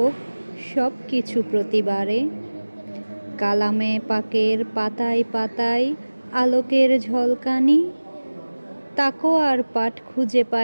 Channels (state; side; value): inverted; both; correlation -1.00